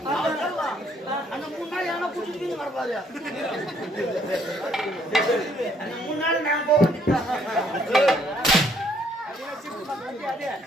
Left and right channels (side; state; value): both; normal; correlation 0.66